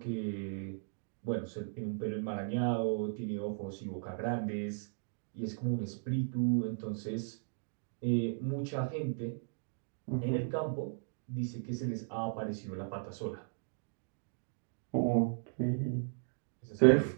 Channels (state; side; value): silent; left; digital silence